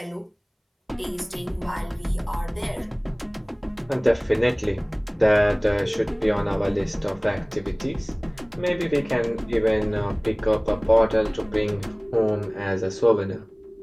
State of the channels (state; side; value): identical; both; correlation 1.00